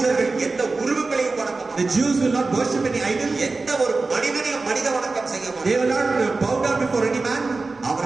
them. யூதர்கள் எந்த உருவங்களையும் வணங்க The மாட்டார்கள். Jews will not worship any idol. எந்த ஒரு மனிதனையும் மனித வணக்கம் செய்ய They will மாட்டார்கள். not bow down before any man.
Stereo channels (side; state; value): left; quieter; 3.7 dB